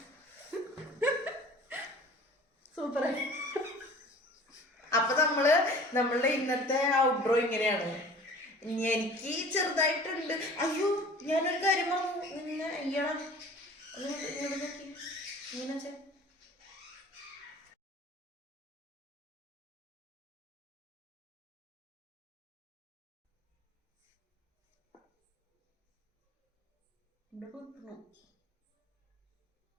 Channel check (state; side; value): normal; both; correlation 0.45